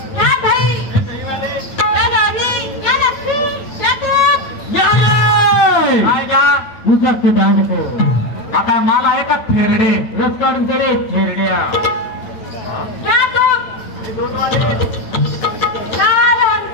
आता माल आहे का थेरडे रस काढून ते रे थेरड्या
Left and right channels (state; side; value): late; right; 8.9 ms